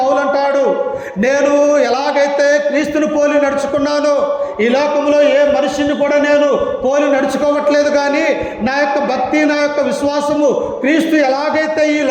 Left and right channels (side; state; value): both; identical; correlation 1.00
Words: అంటాడు, నేను ఎలాగైతే క్రీస్తుని పోలి నడుచుకున్నానో ఈ లోకంలో ఏ మనిషిని కూడా నేను పోలి నడుచుకోవట్లేదు, కానీ నా యొక్క భక్తి నా యొక్క విశ్వాసము క్రీస్తు ఎలాగైతే ఈ